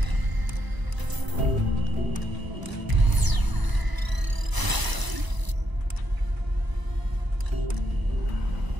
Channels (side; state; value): left; late; 1.0 ms